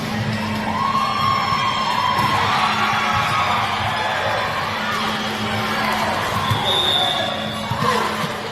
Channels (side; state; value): both; identical; correlation 1.00